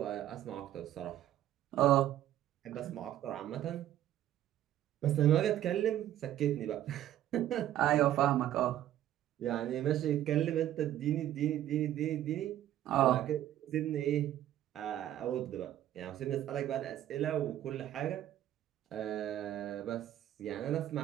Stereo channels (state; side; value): quieter; left; 12.4 dB